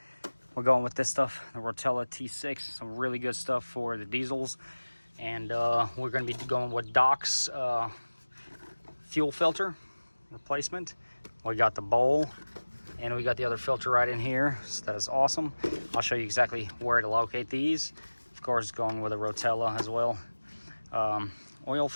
We're going with this stuff, the Rotella T6, some really good stuff for the diesels. And we're going to be going with Doc's fuel filter replacement. We got the bowl, and we got the other filter right in here. So that is awesome. I'll show you exactly where to locate these. Of course, going with a Rotella as well. Oil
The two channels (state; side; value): inverted; both; correlation -1.00